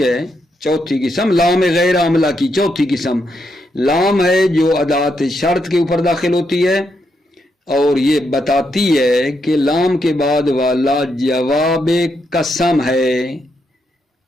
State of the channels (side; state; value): both; normal; correlation 0.80